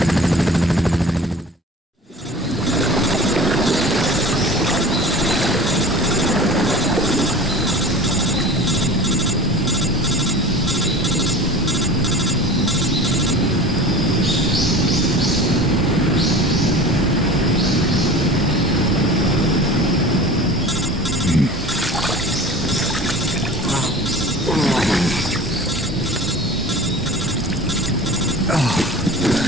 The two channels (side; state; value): both; normal; correlation 0.38